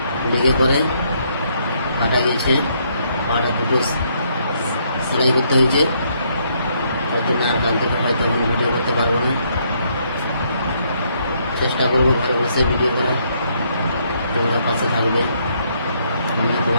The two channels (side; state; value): both; inverted; correlation -0.71